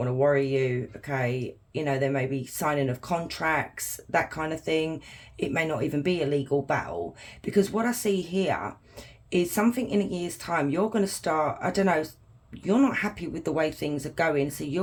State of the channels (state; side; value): identical; both; correlation 1.00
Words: to worry you, okay? You know, there may be signing of contracts, that kind of thing. It may not even be a legal battle, because what I see here is something in a year's time, you're going to start, I don't know, you're not happy with the way things are going, so you're